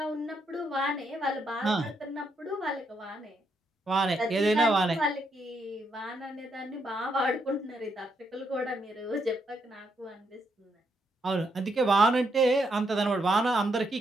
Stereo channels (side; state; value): both; normal; correlation 0.77